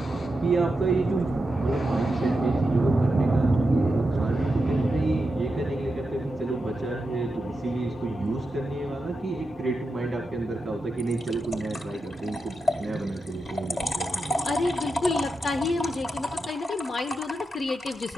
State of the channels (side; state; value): both; normal; correlation 0.88